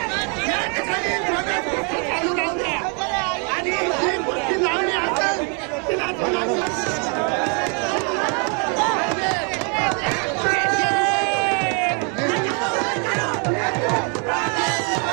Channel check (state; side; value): quieter; left; 37.2 dB